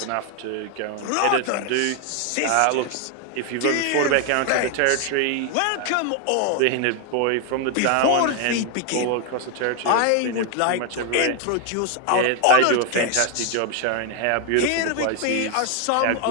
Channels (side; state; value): both; different; correlation 0.00